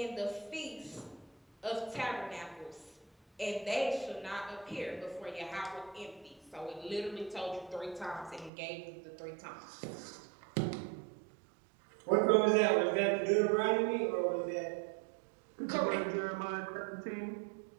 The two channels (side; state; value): left; drops out; at 8.5 s